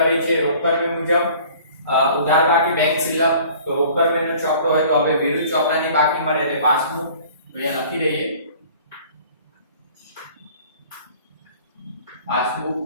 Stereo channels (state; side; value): inverted; both; correlation -0.49